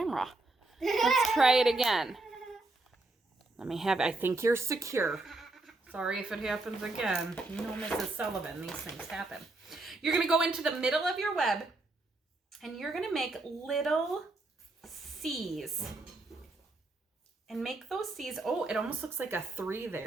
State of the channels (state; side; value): quieter; left; 3.0 dB